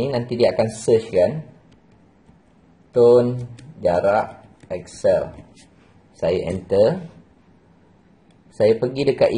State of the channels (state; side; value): identical; both; correlation 1.00